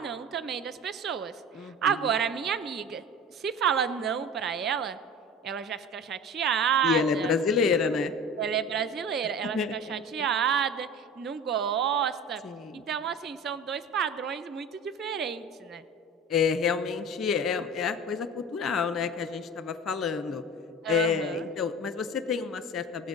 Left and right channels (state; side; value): normal; both; correlation 0.36